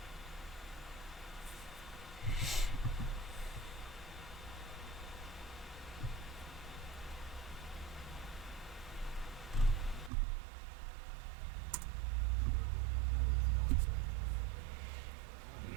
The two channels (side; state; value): left; drops out; at 10.1 s